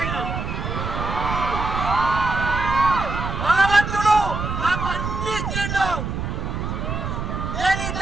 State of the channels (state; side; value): noise; right; rumble, 4 dB below the sound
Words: అయినా భగవంతుడు నాకు అన్ని ఇచ్చిండు. నేను ఈ